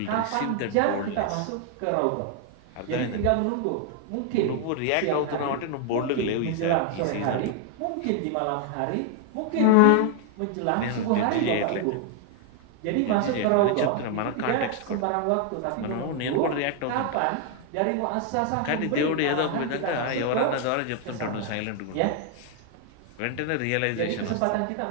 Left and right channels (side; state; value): both; different; correlation 0.00